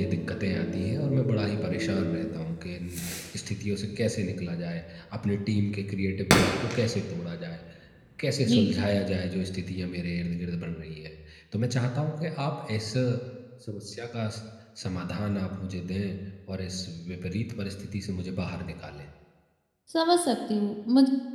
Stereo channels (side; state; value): both; identical; correlation 1.00